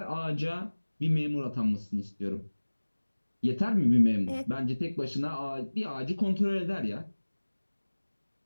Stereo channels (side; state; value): both; inverted; correlation -1.00